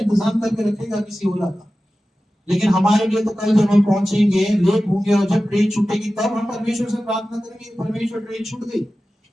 करके रखेगा किसी ओला का। लेकिन हमारे लिए तो कल जब हम पहुंचेंगे, लेट होंगे और जब ट्रेन छूटेगी तब हम परमेश्वर से प्रार्थना करेंगे परमेश्वर ट्रेन छूट गई।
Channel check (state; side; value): normal; both; correlation 0.95